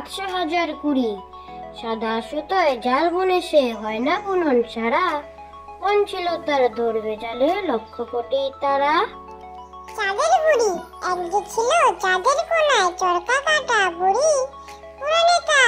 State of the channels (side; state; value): both; identical; correlation 1.00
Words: সাদা সুতোয় জাল বুনে সে হয় না বুনন সারা। মন ছিল তার ধরবে জালে লক্ষ কোটি তারা। চাঁদের বুড়ি এক যে ছিল চাঁদের কোনায় চরকা কাটা বুড়ি। পুরাণে